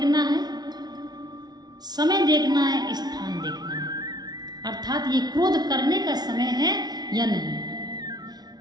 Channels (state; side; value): late; left; 0.19 ms